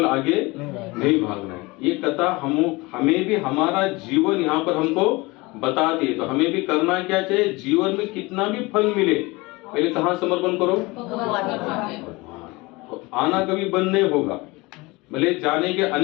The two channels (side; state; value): right; quieter; 23.4 dB